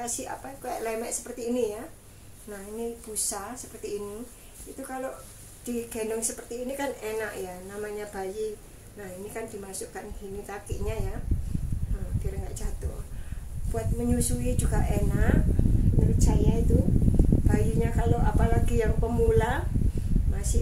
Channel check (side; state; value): both; identical; correlation 1.00